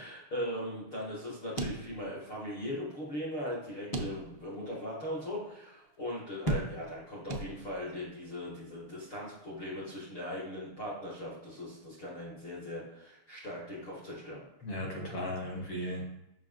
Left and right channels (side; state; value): right; late; 6.5 ms